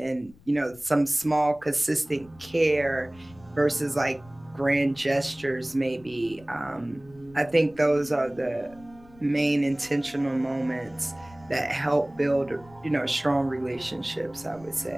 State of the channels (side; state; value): left; noise; rumble, 25 dB below the sound